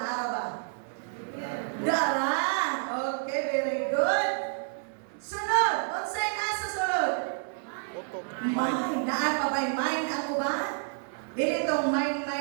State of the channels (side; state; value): left; silent; 58 dB below the other